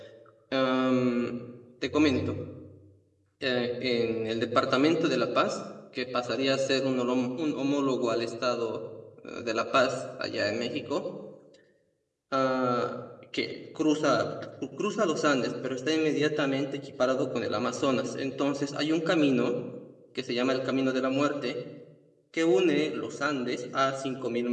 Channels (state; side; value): identical; both; correlation 1.00